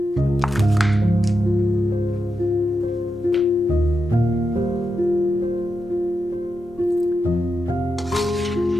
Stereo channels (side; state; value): both; normal; correlation 0.87